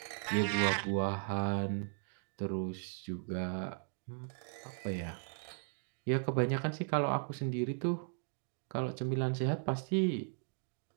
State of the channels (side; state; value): left; silent; 53 dB below the other